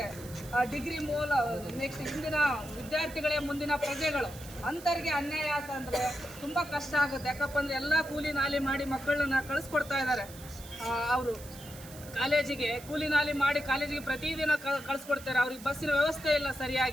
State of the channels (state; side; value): noise; right; hiss, 17 dB below the sound